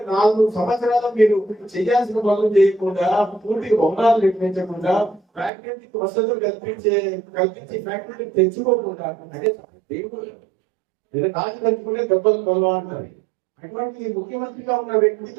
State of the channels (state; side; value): drops out; left; at 5.5 s